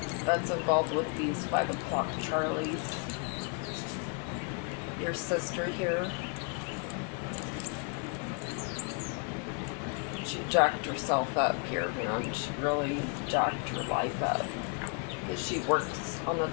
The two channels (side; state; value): right; quieter; 36.3 dB